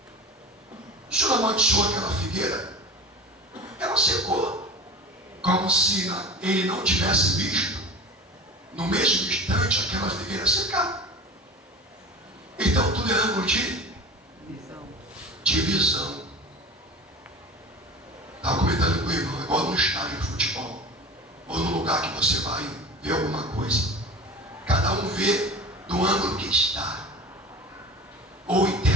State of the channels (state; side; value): normal; both; correlation 0.35